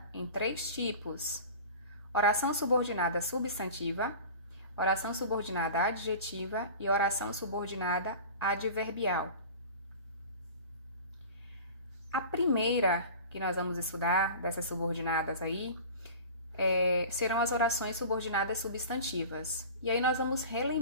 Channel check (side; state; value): both; inverted; correlation -0.38